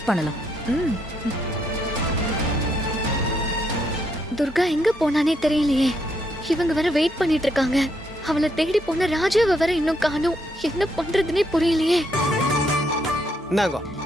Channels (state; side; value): normal; both; correlation 0.75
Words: பண்ணலாம். ம். துர்கா எங்க போனானே தெரியலையே. இவங்க வேற வெயிட் பண்ணிட்டு இருக்காங்க. அவளை தேடி போன ராஜாவை வேற இன்னும் காணோம். என்ன பண்றதுன்னே புரியலையே. இந்தாங்க,